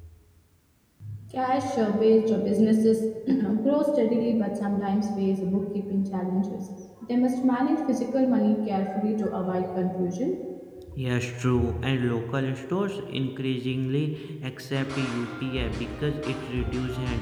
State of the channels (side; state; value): both; identical; correlation 1.00